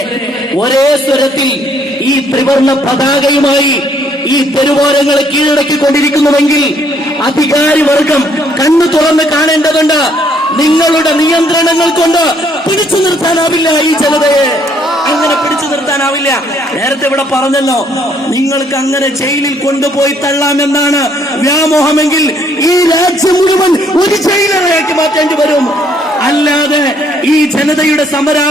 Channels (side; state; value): both; normal; correlation 0.67